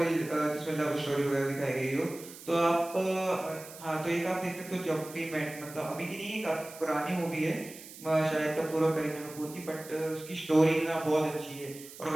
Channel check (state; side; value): noise; right; hiss, 16 dB below the sound